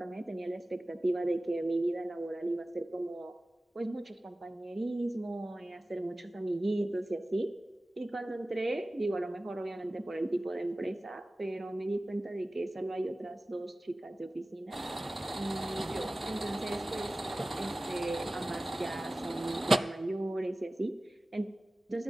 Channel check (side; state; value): both; normal; correlation 0.97